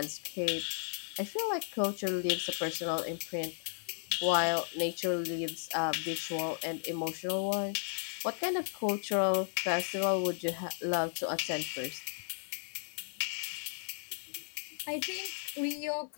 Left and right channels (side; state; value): right; silent; digital silence